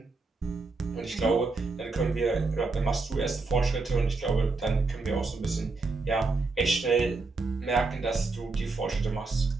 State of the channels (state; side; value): quieter; left; 3.8 dB